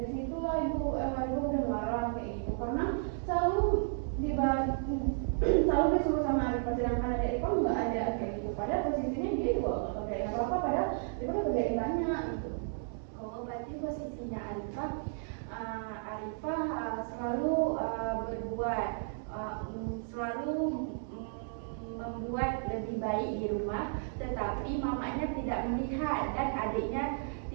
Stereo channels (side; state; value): left; silent; digital silence